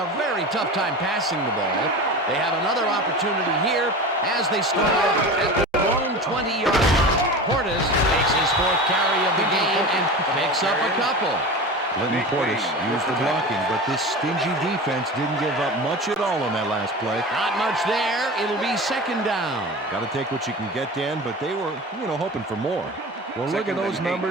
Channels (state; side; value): normal; both; correlation 0.31